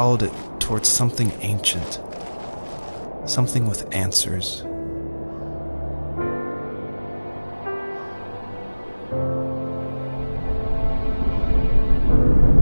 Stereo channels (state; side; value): inverted; both; correlation -1.00